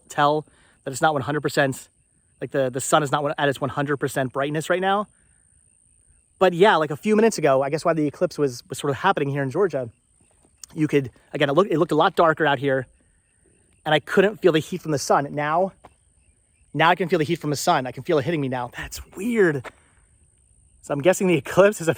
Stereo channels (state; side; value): identical; both; correlation 1.00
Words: that it's not 100%. Like the sun is not at its 100% brightness right now. But yeah, like a few minutes ago, I guess while the eclipse was sort of happening here in Georgia, you could, again, it looked a lot darker out here, and I couldn't feel the heat from the sun. Now I can feel the heat from the sun. I can feel it hitting me now. That's weird. So I'm guessing the eclipse has